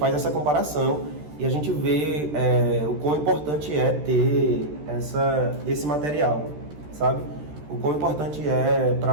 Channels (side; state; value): left; late; 13 ms